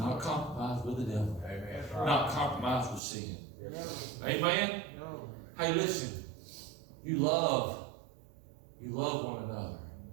compromise with the devil. Amen. Not compromise with sin. Yes, sir. Amen. No. Hey, listen. You love one another.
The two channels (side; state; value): left; drops out; at 3.0 s